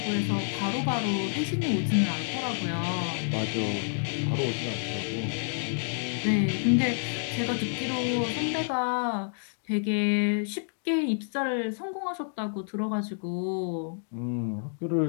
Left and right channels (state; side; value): silent; right; digital silence